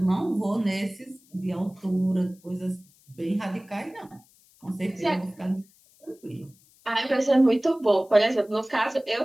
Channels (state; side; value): noise; left; hiss, 30 dB below the sound